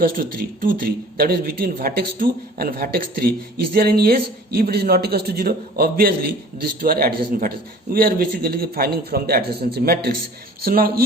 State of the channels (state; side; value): normal; both; correlation 0.48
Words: to 3, 2 3, that is between vertex 2 and vertex 3, is there any edge? If it is not equals to 0, obviously these two are adjacent vertices. We are basically finding from the adjacency matrix. So now